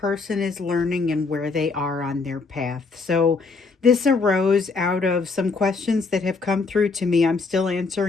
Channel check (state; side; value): quieter; right; 4.3 dB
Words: is learning and where they are on their path. So this arose out of some questions that have come through to me. I'm still